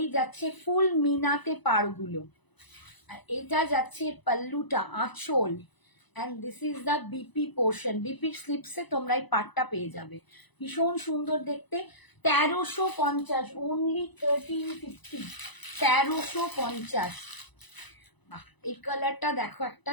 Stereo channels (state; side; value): late; right; 1.0 ms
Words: যাচ্ছে ফুল মিনাতে পাড়গুলো, আর এটা যাচ্ছে পাল্লুটা, আঁচল, and this is the BP portion, বিপির স্লিপসে তোমরা এই পাটটা পেয়ে যাবে, ভীষণ সুন্দর দেখতে। 1350, অনলি 1350, 1350। এই কালারটা দেখো, একটা